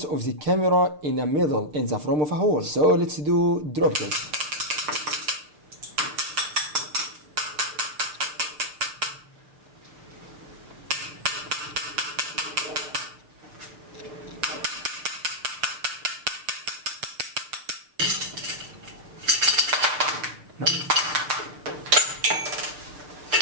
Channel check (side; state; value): left; late; 6.7 ms